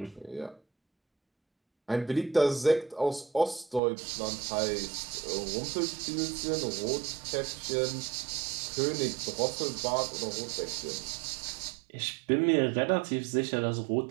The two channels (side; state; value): left; drops out; at 3.8 s